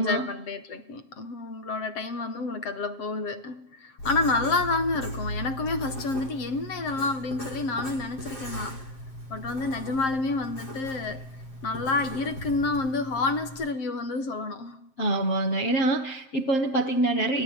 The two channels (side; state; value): right; late; 7.5 ms